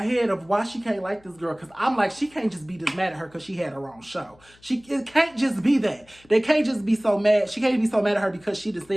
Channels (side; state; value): left; noise; hum, 29 dB below the sound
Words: head of why she can't like this girl. Because I'm like, she can't just be this mad at her because she had her own show. It can't just be that. They can't just be so mad. She can't be so mad at her because she just